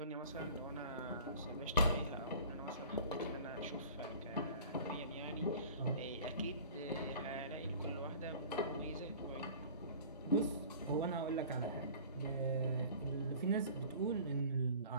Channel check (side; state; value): both; inverted; correlation -0.44